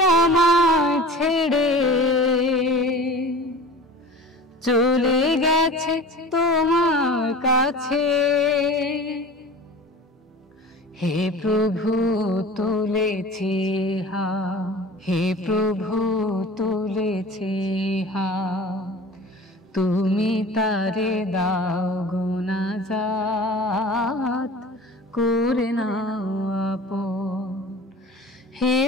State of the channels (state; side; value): normal; both; correlation 0.39